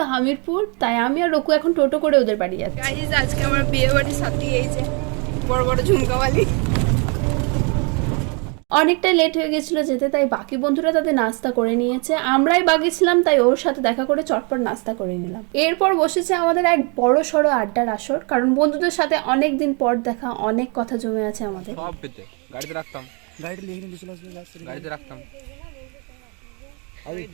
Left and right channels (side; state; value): left; quieter; 33.9 dB